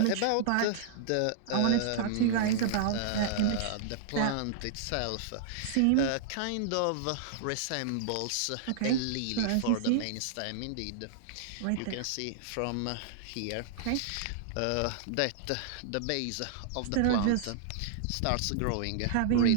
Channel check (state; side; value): different; both; correlation -0.01